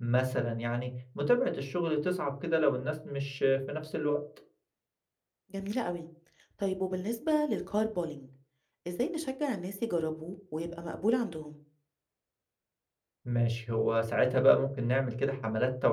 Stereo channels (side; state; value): both; identical; correlation 1.00